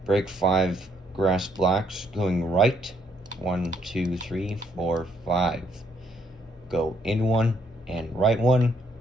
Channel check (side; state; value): both; normal; correlation 0.70